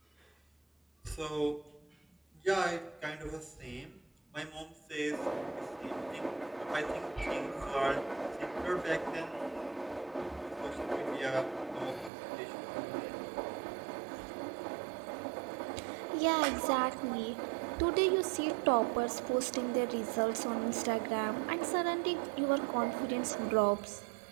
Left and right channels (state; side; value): drops out; left; at 12.1 s